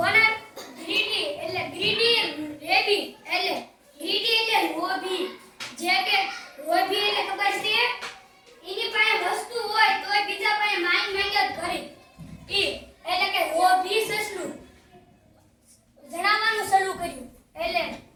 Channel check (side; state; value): both; identical; correlation 1.00